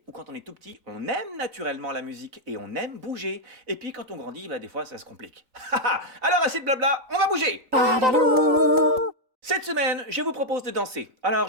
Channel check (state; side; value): late; left; 3.9 ms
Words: ou quand on est tout petit, on aime naturellement la musique et on aime bouger. Et puis quand on grandit, des fois ça se complique. Alors assez de blabla, on va bouger. Cette semaine, je vous propose de danser. Alors